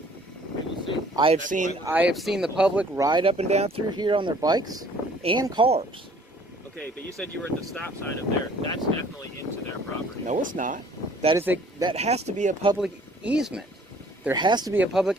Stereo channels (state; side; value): normal; both; correlation 0.56